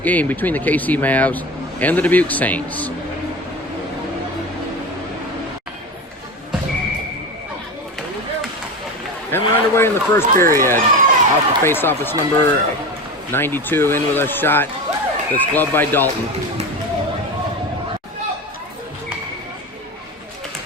game between the KC Mavs and the Dubuque Saints. And we're underway in the first period. Off the face-off, it's number 92 in with a shot that's gloved by Dalton.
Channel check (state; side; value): normal; both; correlation 0.26